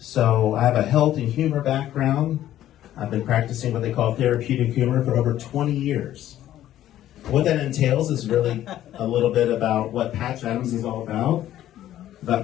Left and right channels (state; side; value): quieter; right; 12.6 dB